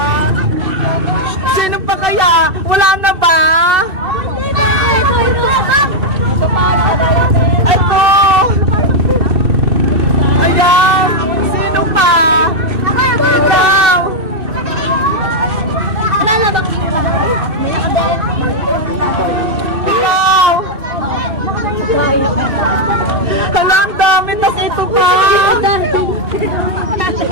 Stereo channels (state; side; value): late; left; 2.6 ms